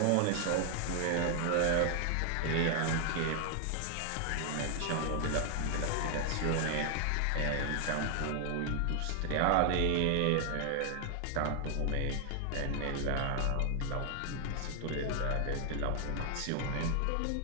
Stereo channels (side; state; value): both; different; correlation 0.00